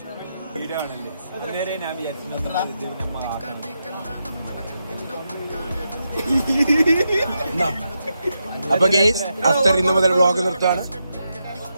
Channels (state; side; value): inverted; both; correlation -0.85